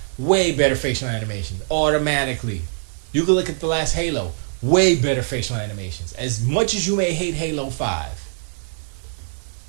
Way better facial animations. Automatically. You could look at the last Halo. Way better facial animations. As much as you may hate Halo 5,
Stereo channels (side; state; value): left; silent; digital silence